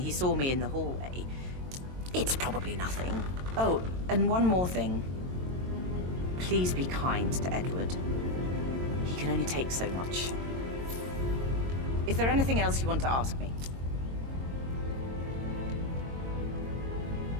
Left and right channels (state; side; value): late; left; 22 ms